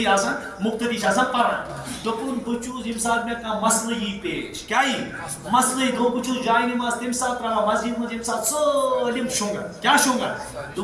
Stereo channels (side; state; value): both; identical; correlation 1.00